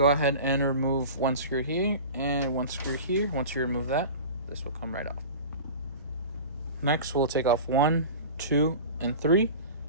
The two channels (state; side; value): inverted; both; correlation -0.35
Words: ahead and remove 1 screw here and 1 screw here. Once you remove that, this will come right off. Next, we'll take off 1, 2, and 3,